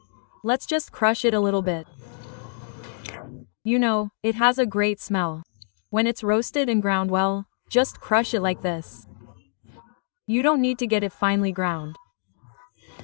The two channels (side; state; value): right; silent; digital silence